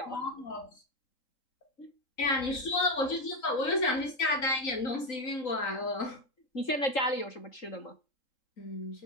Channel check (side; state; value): right; late; 3.9 ms